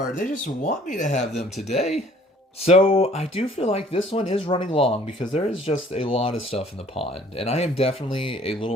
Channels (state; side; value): normal; both; correlation 0.56